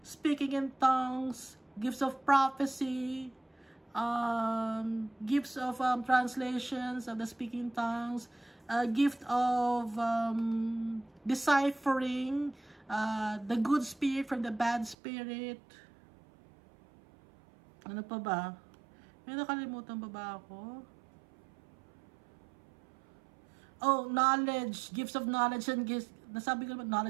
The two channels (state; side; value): drops out; left; at 15.0 s